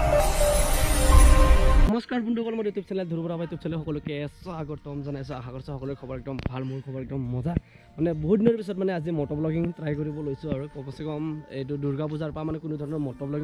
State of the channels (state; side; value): identical; both; correlation 1.00